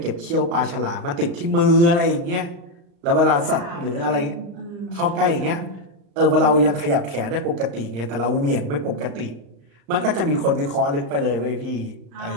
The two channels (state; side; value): late; left; 35 ms